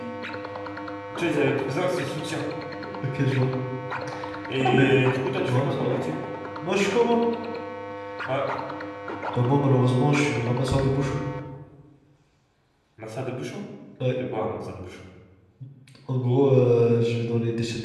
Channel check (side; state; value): both; identical; correlation 1.00